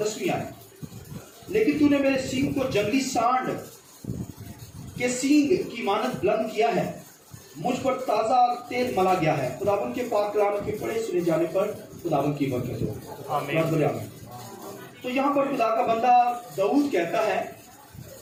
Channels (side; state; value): both; identical; correlation 1.00